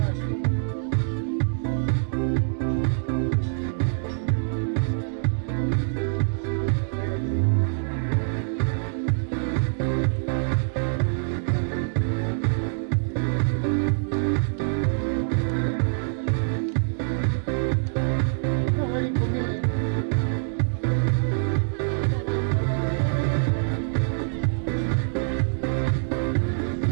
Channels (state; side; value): silent; left; digital silence